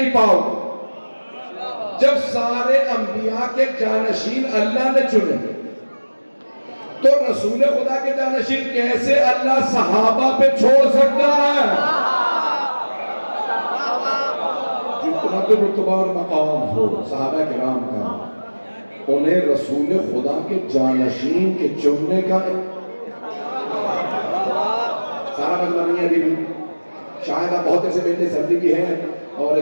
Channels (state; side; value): inverted; both; correlation -1.00